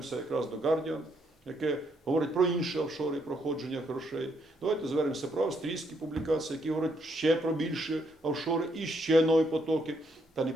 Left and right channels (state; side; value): normal; both; correlation 0.74